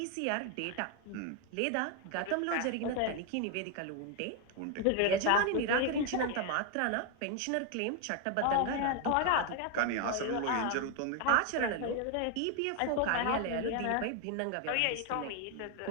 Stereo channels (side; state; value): both; different; correlation 0.01